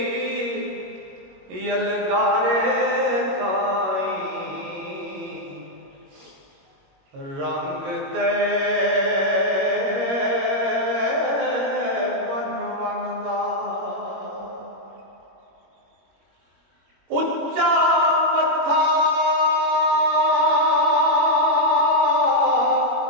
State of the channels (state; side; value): late; left; 21 ms